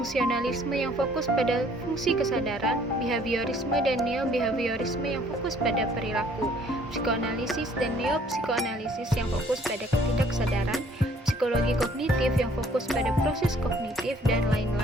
yang fokus pada fungsi kesadaran, behaviorisme dan neo-behaviorisme yang fokus pada perilaku, psikoanalisis dan neo-psikoanalisis yang fokus pada ketidaksadaran, psikologi kognitif yang fokus pada proses kognitif, dan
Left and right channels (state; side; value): normal; both; correlation 0.60